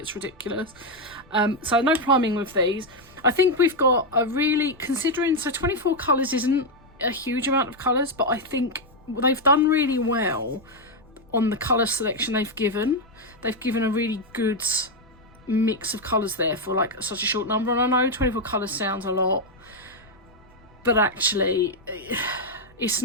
ridiculous. So no priming with these. I think we've got a really, considering, so 24 colours isn't a huge amount of colours, but I think they've done really well on the colour selection they've given. They've given a really good mix of colours there for like such a short number, and I know 24 colours sounds a lot, but actually it's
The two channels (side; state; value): left; noise; rumble, 27 dB below the sound